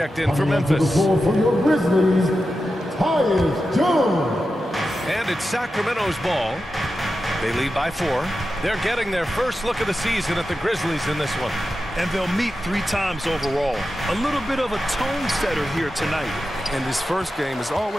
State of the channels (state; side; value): normal; both; correlation 0.91